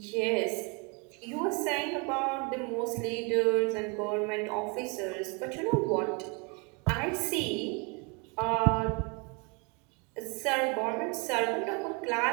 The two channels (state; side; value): quieter; left; 31.5 dB